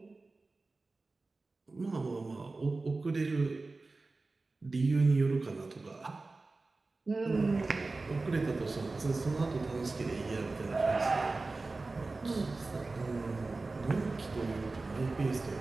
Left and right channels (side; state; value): left; quieter; 3.5 dB